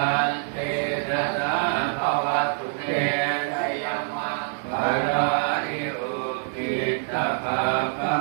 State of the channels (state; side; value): silent; left; 62 dB below the other